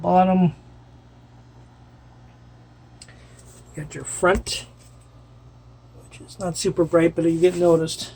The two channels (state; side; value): identical; both; correlation 1.00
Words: You got your front, which is not super bright, but you get noticed,